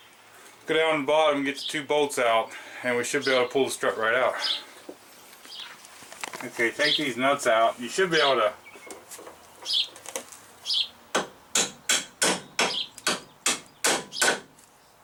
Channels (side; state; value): both; identical; correlation 1.00